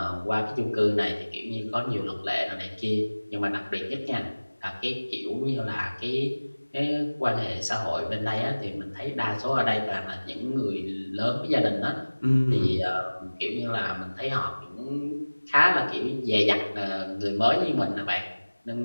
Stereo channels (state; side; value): inverted; both; correlation -1.00